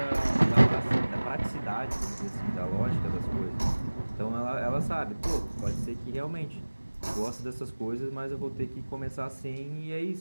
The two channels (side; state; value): both; inverted; correlation -1.00